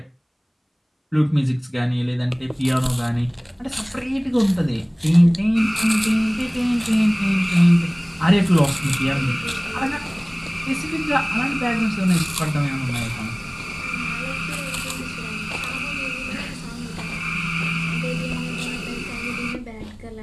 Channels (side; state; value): both; identical; correlation 1.00